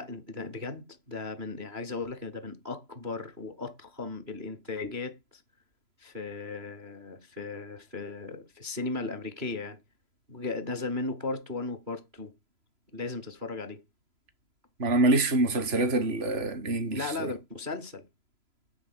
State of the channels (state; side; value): late; left; 3.0 ms